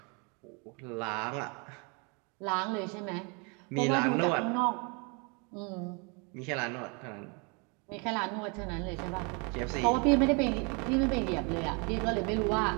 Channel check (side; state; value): left; quieter; 32.5 dB